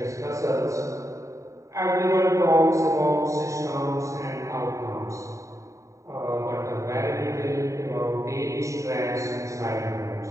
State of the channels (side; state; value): left; late; 0.15 ms